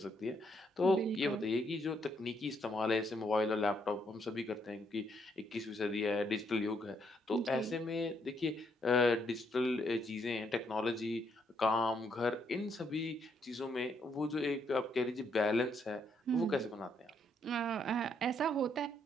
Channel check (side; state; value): both; normal; correlation 0.73